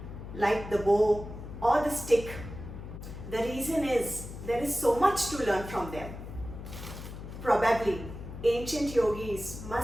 like the bow or the stick. The reason is there is so much to learn from them. Probably ancient yogis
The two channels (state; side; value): noise; left; hum, 11 dB below the sound